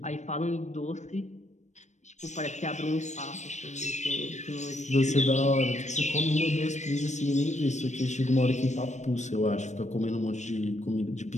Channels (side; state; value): right; late; 0.34 ms